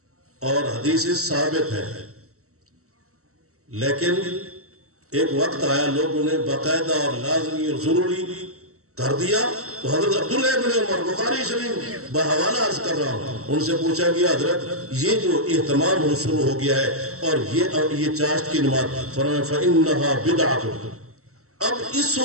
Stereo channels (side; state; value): left; late; 0.64 ms